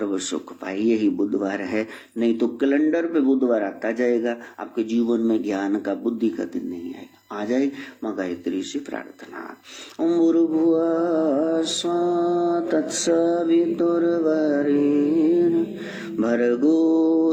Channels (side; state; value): both; identical; correlation 1.00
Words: सुख पाए। यही बुधवार है, नहीं तो कैलेंडर पे बुधवार आता जाएगा, आपके जीवन में ज्ञान का, बुद्धि का दिन नहीं आएगा। आ जाए मां गायत्री से प्रार्थना। ओम भूर्भुवः स्वः तत्सवितुर्वरेण्यं